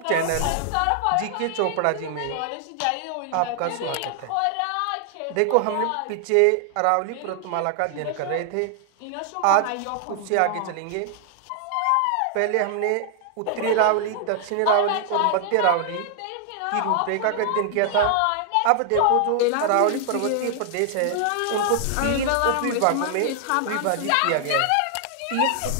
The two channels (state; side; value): different; both; correlation 0.00